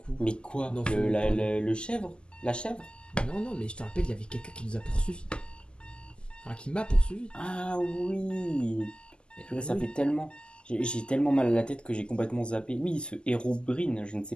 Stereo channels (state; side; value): late; right; 0.049 ms